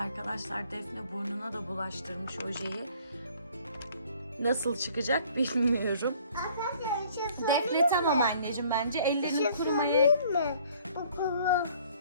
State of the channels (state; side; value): inverted; both; correlation -0.56